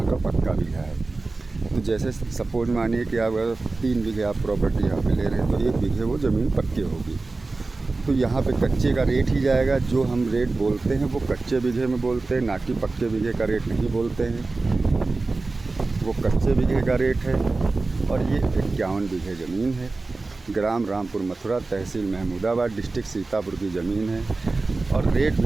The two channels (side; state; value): left; quieter; 3.5 dB